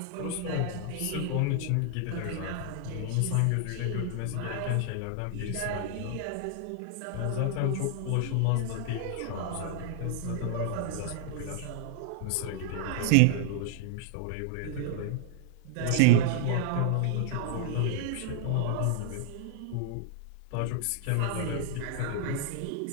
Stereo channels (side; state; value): both; different; correlation 0.00